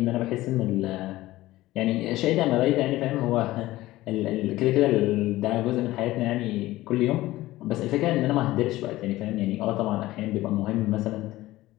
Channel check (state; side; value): quieter; right; 17.1 dB